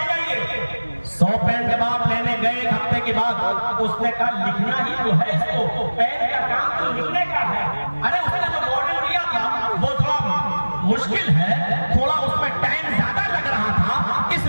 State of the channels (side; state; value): both; inverted; correlation -1.00